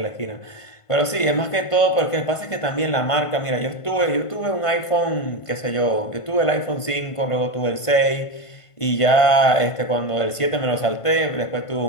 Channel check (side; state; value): right; late; 1.5 ms